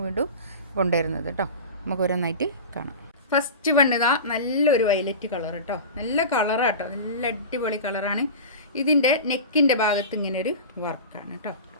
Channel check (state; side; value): inverted; both; correlation -0.31